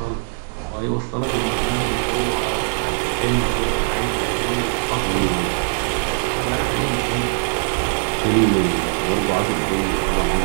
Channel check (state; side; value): silent; left; 65 dB below the other